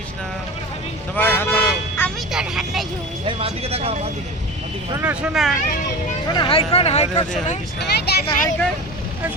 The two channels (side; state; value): both; normal; correlation 0.31